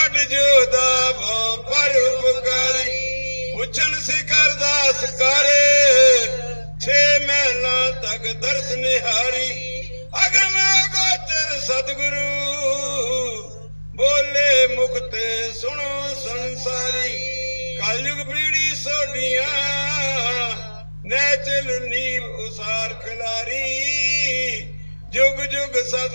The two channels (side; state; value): both; inverted; correlation -1.00